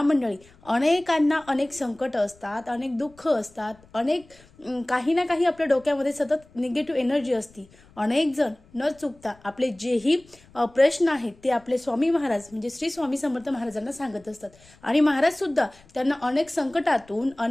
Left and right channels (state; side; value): noise; left; rumble, 28 dB below the sound